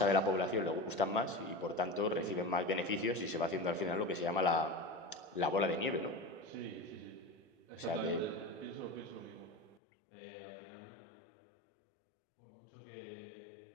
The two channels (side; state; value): right; drops out; at 9.8 s